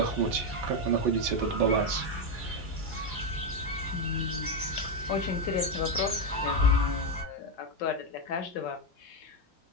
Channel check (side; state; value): both; normal; correlation 0.07